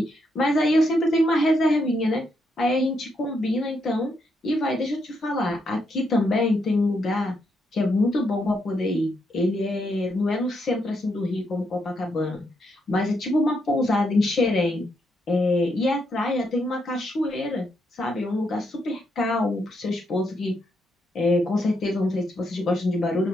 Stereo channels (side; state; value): both; normal; correlation 0.79